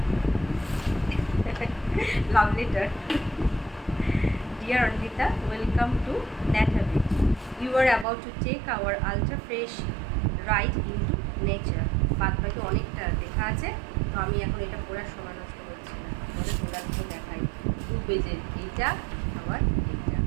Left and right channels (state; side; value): drops out; left; at 8.1 s